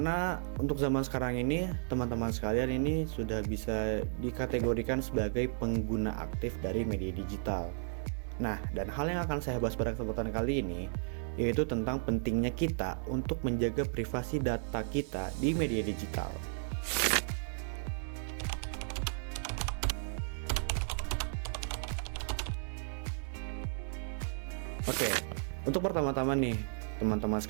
untuk zaman sekarang ini, teman-teman sekalian ini sudah bisa dikategorikan sebagai pengguna aktif dari media digital. Nah, dan hal yang akan saya bahas pada kesempatan kali ini yaitu tentang pentingnya kita untuk menjaga privasi data kita di media digital. Oke, untuk pertama-tama nih, teman-teman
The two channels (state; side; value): silent; left; 55 dB below the other